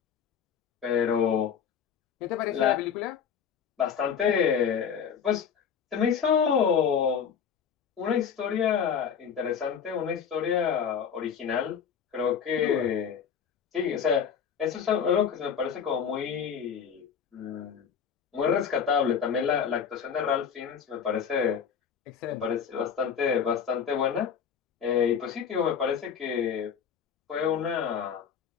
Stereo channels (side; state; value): right; quieter; 7.3 dB